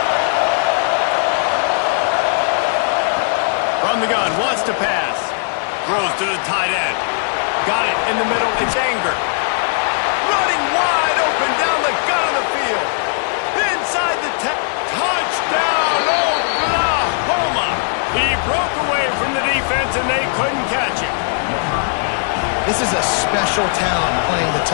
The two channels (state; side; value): silent; right; 67 dB below the other